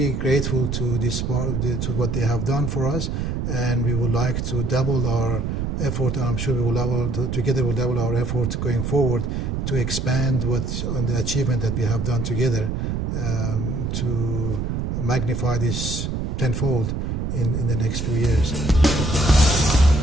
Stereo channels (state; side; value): noise; right; rumble, 2 dB below the sound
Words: grateful to to what they have done for us, and we would like to double our effort. I'm sure we will together we'll double our effort going forward to expand on the achievement that we have done together, to magnify this tenfold in the next few years.